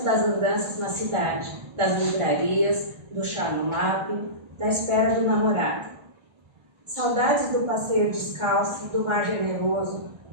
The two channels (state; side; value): late; left; 1.4 ms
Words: das andanças na cidade, das livrarias, do chá no MAP, da espera do namorado. Saudades do passeio descalço, do mar generoso,